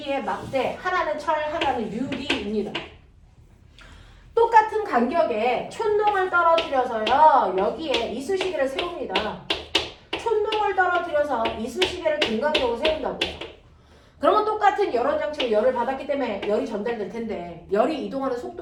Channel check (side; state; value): both; identical; correlation 1.00